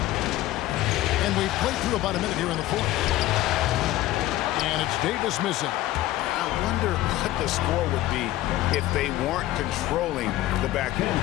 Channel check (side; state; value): right; quieter; 15.4 dB